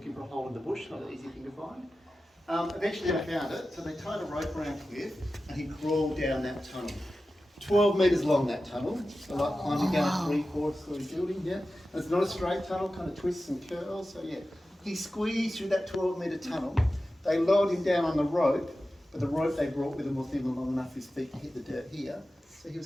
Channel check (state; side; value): normal; both; correlation 0.94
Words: for a hole in the bush, not an easy thing to find. Eventually they found it, so they tied a rope around Cliff and he crawled down that tunnel. 12 metres long, that tunnel. So like climbing down a 3/4 story building, yeah. And it's not a straight tunnel, kind of twists and curls, so yeah. He squeezed through that 12-metre tunnel. They lowered him down on the rope, but the rope they brought with them wasn't even long enough for his feet to hit the dirt here. So he